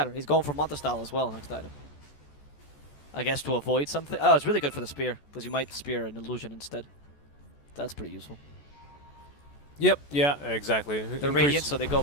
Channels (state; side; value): late; right; 14 ms